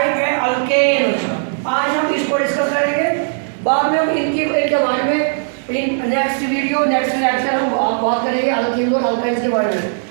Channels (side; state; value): left; silent; 65 dB below the other